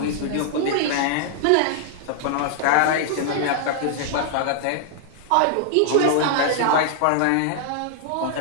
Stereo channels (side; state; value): both; different; correlation -0.01